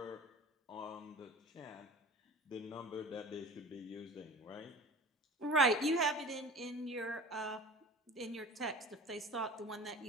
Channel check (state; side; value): normal; both; correlation 0.39